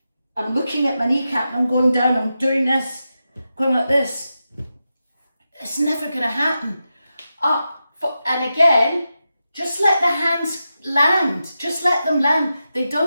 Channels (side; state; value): both; inverted; correlation -0.90